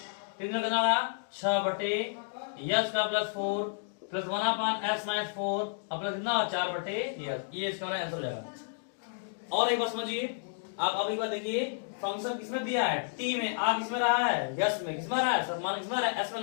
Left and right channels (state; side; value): silent; right; digital silence